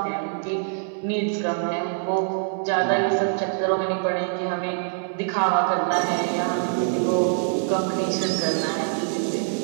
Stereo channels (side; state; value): left; silent; digital silence